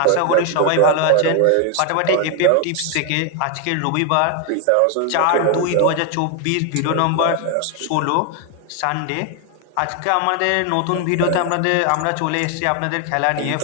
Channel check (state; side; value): different; both; correlation 0.01